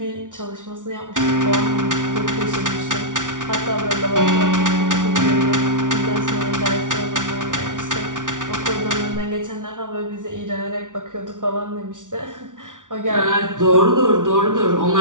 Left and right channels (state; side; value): late; left; 0.87 ms